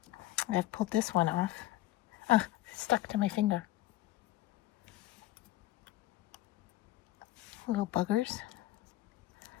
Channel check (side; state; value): right; quieter; 15.5 dB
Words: I've pulled this one off. Oh, it's stuck to my finger. Little buggers.